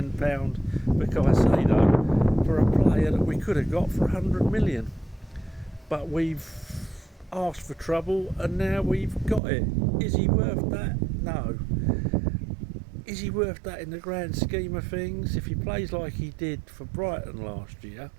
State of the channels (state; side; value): drops out; left; at 9.4 s